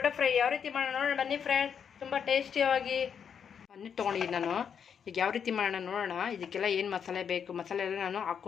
ಫ್ರೈ ಯಾವ ರೀತಿ ಮಾಡೋಣ ನೋಡೋಣ ಬನ್ನಿ ಫ್ರೆಂಡ್ಸ್. ತುಂಬ ಟೇಸ್ಟಿಯಾಗಿ ಪನ್ನೀರ್ ತೊಗೊಂಡಿದ್ದೀನಿ ನಾನು. ಈಗ ಯಾವ ರೀತಿ ಮಾಡೋಣ ನೋಡೋಣ. ಇದಕ್ಕೆಲ್ಲ ಏನು ಮಸಾಲೆ ಬೇಕು, ಮಸಾಲೆ ಎಲ್ಲ ನಾನು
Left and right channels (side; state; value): right; quieter; 7.4 dB